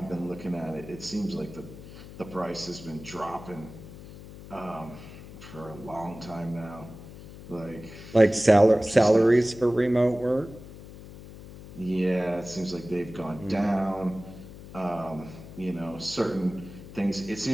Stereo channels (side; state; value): left; noise; hum, 16 dB below the sound